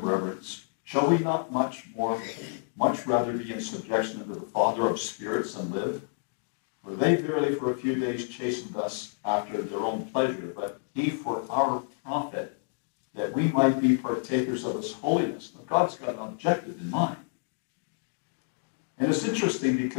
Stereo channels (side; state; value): right; silent; digital silence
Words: reverence. Shall we not much rather be in subjection unto the Father of spirits and live? For they verily for a few days chastened us after their own pleasure, but he for our profit, that we might be partakers of his holiness. Now, God's got an objective in mind. And it's interesting